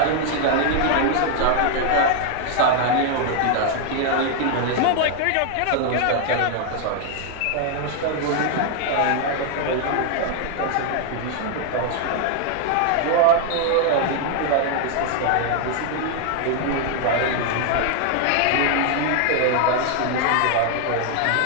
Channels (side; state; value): both; different; correlation 0.00